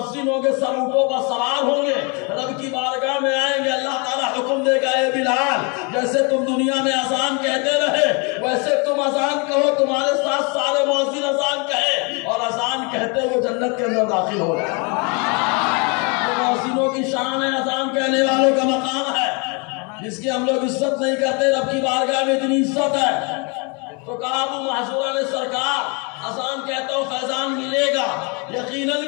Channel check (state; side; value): quieter; right; 32.4 dB